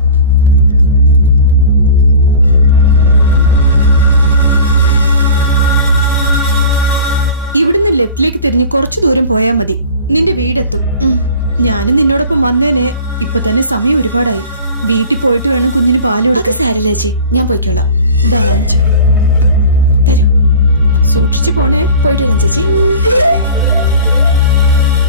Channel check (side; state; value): both; inverted; correlation -0.41